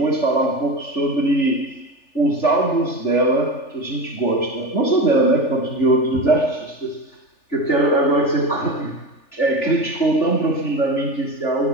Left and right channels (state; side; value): late; right; 3.4 ms